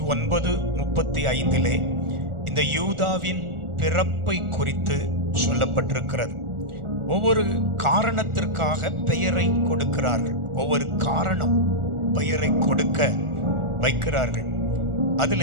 இந்த யூதாவின் பிறப்பை குறித்து சொல்லப்பட்டிருக்கிறது. ஒவ்வொரு காரணத்திற்காக பெயரை கொடுக்கிறார்கள். ஒவ்வொரு காரணம் பெயரை கொடுக்க வைக்கிறார்கள்.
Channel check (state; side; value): late; left; 1.4 ms